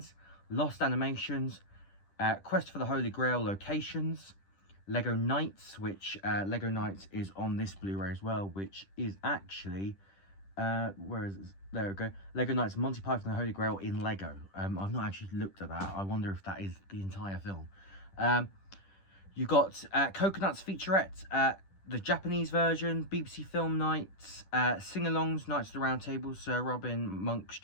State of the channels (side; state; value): right; late; 10 ms